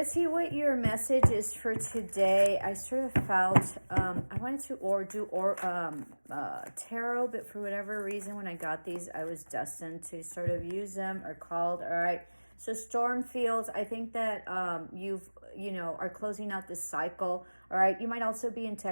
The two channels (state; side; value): inverted; both; correlation -1.00